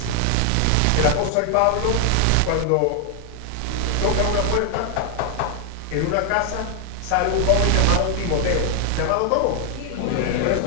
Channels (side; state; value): both; different; correlation 0.00